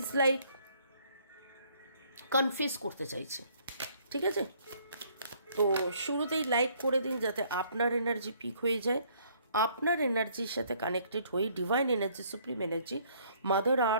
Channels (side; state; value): both; inverted; correlation -0.63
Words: ইজ লাইক কনফেস করতে চাইছে। ঠিক আছে, তো শুরুতেই লাইক করে দিন যাতে আপনার এনার্জি পিক হয়ে যায়। আপনার এনার্জির সাথে কানেক্টেড হয়ে divine energy, supreme energy, mother